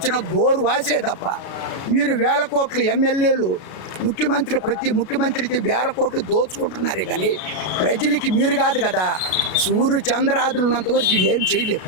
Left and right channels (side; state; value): right; late; 32 ms